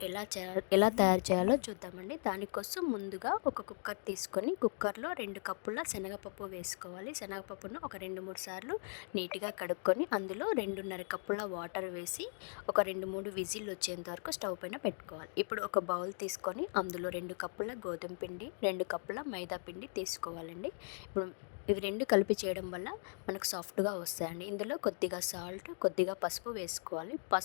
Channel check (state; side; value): silent; right; 52 dB below the other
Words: ఎలా తయారు చేయాలో చూద్దామండి. దానికోసం ముందుగా ఒక కుక్కర్ తీసుకొని కుక్కర్లో 2 కప్పుల శనగపప్పు వేసుకోవాలి. శనగపప్పును ఒక 2-3 సార్లు నీట్గా కడుక్కొని అందులో 2.5 కప్పుల వాటర్ వేసి ఒక 2-3 విజిల్ వచ్చేంత వరకు స్టవ్ పైన పెట్టుకోవాలి. ఇప్పుడు ఒక బౌల్ తీసుకొని అందులో 2 కప్పుల గోధుమ పిండి, 2 కప్పుల మైదా పిండి తీసుకోవాలండి. ఇప్పుడు ఇవి 2 కలిపి చేయడం వల్ల మనకు సాఫ్ట్గా వస్తాయండి. ఇందులో కొద్దిగా సాల్ట్, కొద్దిగా పసుపు వేసుకోవాలి.